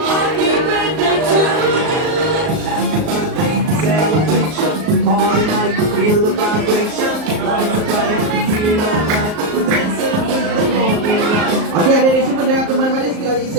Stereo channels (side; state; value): left; late; 38 ms